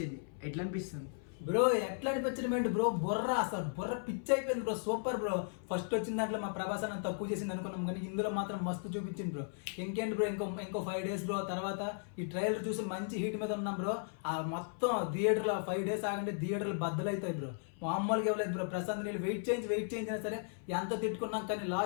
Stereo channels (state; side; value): silent; right; 54 dB below the other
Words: ఎట్లా అనిపిస్తుంది బ్రో? ఎట్లా అనిపించడం బ్రో, బుర్ర అసలు బుర్ర పిచ్చి అయిపోయింది బ్రో. Super bro. ఫస్ట్ వచ్చిన దాంట్లో మా ప్రభాస్ అన్న తక్కువ చేసింది అనుకున్నాం, కానీ ఇందులో మాత్రం మస్తు చూపించింది బ్రో. ఇంకేంటి బ్రో, ఇంకో 5 days బ్రో. తర్వాత ఈ ట్రైలర్ చూసి మంచి హీట్ మీద ఉన్నాం బ్రో. ఆ మొత్తం థియేటర్లో 5 days ఆగంటే థియేటర్లు బద్దలవుతాయి బ్రో. మామూలుగా ఇవ్వలేదు బ్రో. ప్రశాంత్ నీళ్ళు వెయిట్ చేయించినా సరే ఎంత తిట్టుకున్నాం, కానీ